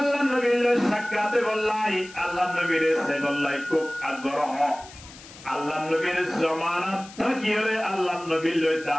নবীর লই সাক্ষাতে বললাই আল্লাহ নবীর সে বললাই খুব আগ্রহ আল্লাহ নবীর জামানত থাকিলে আল্লাহ নবীর লই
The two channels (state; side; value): noise; left; hiss, 19 dB below the sound